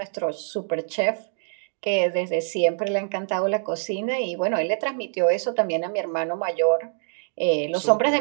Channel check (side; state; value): left; silent; digital silence